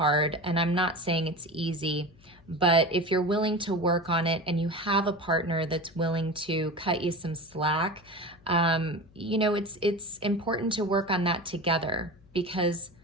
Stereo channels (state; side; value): noise; left; hum, 27 dB below the sound